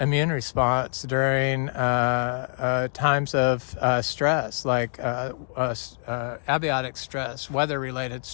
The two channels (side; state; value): right; silent; digital silence